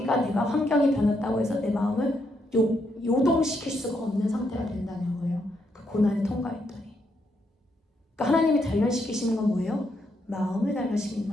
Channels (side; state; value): both; normal; correlation 0.78